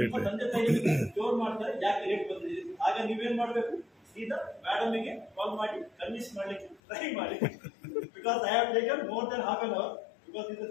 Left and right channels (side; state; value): right; drops out; at 6.8 s